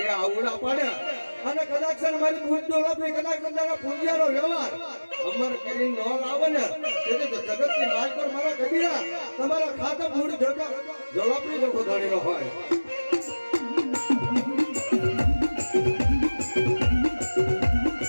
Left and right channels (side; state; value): both; inverted; correlation -1.00